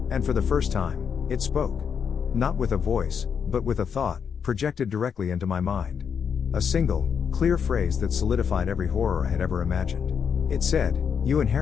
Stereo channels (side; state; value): right; quieter; 7.0 dB